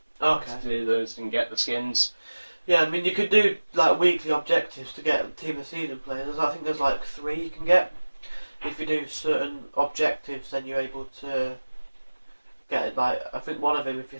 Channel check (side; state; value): both; inverted; correlation -1.00